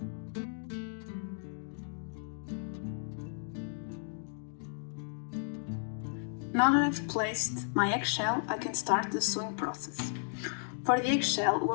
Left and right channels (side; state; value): right; silent; digital silence